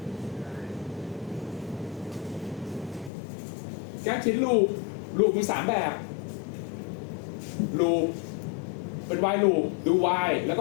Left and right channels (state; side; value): drops out; right; at 3.1 s